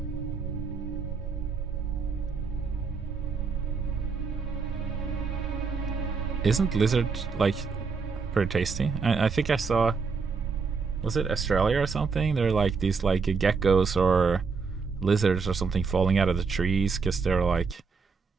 Isn't lizard like pretty tasty? I think I saw, was it Australia or something? They're like these like geckos or lizards or something falling out of the trees because they're like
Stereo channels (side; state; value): left; quieter; 5.0 dB